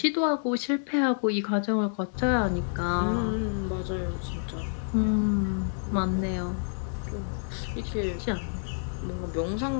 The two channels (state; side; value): silent; right; digital silence